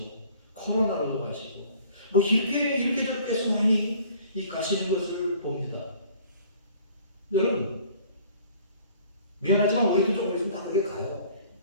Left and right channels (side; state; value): both; inverted; correlation -0.53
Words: 코로나로도 가시고 이렇게 저렇게 해서 많이 가시는 것을 봅니다. 여러분 미안하지만 우리도 조금 있으면 다 그렇게 가요.